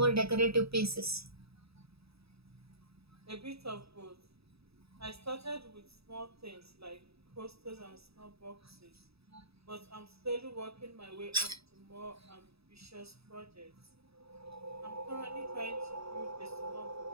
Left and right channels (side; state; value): left; late; 0.77 ms